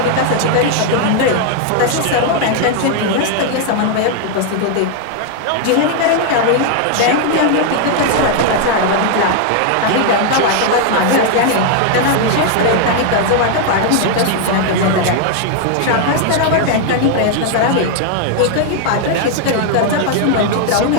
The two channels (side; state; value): both; different; correlation 0.00